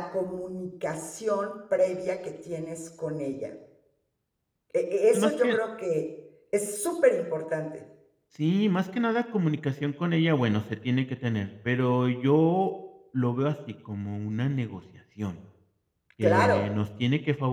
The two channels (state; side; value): identical; both; correlation 1.00